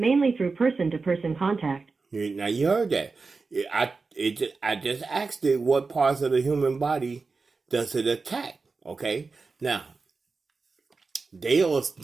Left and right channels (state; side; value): quieter; left; 4.2 dB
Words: through person-to-person contact. Now you heard that. I just asked it what parts of the human body does it attack. Okay, now they'll